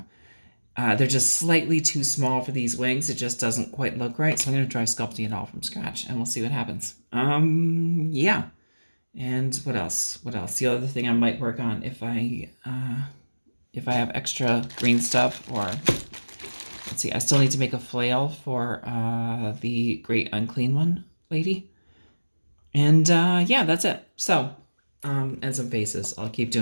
They're just slightly too small for these wings. It just doesn't quite look right. So I'm going to try sculpting it all from scratch and we'll see what happens. Yeah. And what else? What else? The other thing I might work on if I have extra green stuff, or let's see, I still need to make a flail for the Great Unclean One lady. And yeah, that's it. So, and some faces. I'll keep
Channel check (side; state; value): both; inverted; correlation -1.00